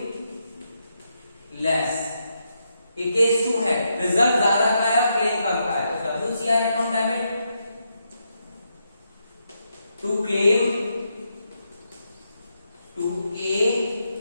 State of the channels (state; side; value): inverted; both; correlation -0.82